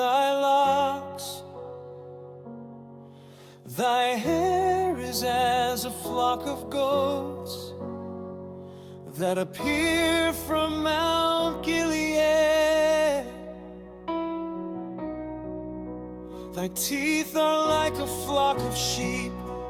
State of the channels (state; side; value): identical; both; correlation 1.00